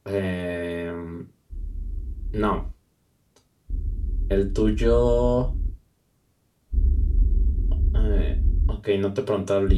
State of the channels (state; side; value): identical; both; correlation 1.00